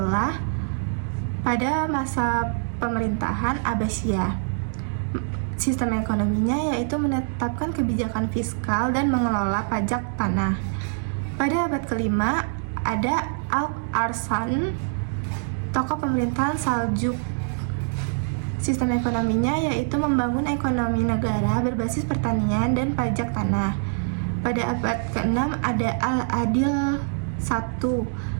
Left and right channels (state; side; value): silent; left; digital silence